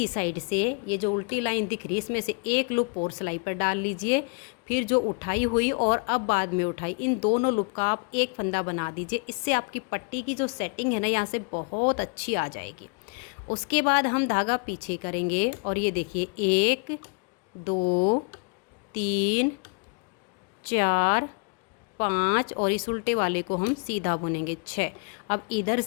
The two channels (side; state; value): right; quieter; 37.5 dB